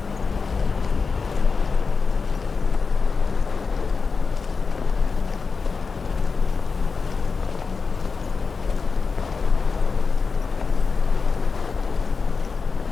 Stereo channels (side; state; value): right; quieter; 4.9 dB